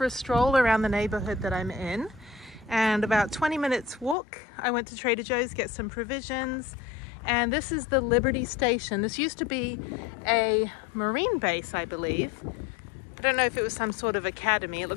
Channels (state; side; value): drops out; right; at 4.2 s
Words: a stroll around the neighborhood that I'm in, and about 20 minutes walk. I went to Trader Joe's, get some provisions, and this is the Liberty Station. This used to be a Marine base, I believe. I don't know if it was some sort of academy. It